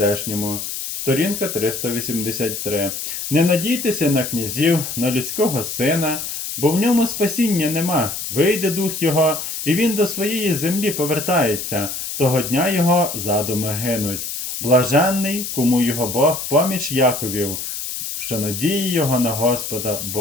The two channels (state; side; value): noise; left; hiss, 5 dB below the sound